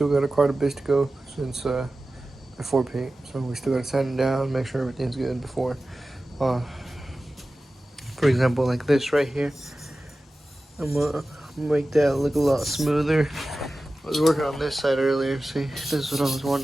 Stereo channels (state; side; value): normal; both; correlation 0.95